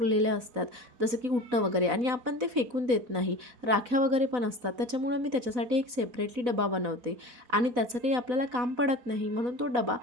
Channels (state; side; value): late; left; 4.0 ms